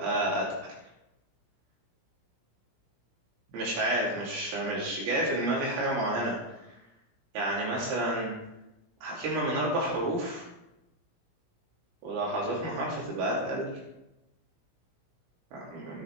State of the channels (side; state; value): left; late; 17 ms